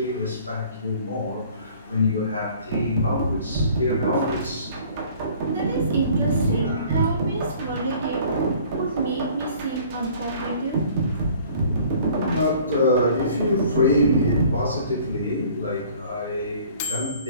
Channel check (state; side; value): inverted; both; correlation -0.52